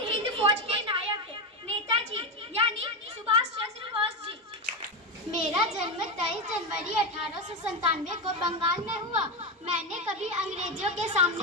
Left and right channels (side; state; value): both; normal; correlation 0.12